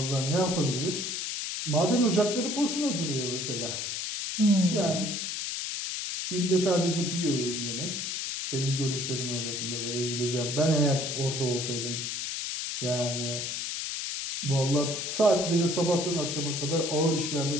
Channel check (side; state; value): left; noise; hiss, 3 dB below the sound